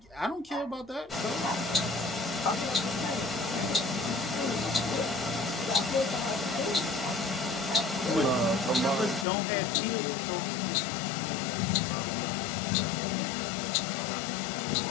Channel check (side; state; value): right; drops out; at 9.2 s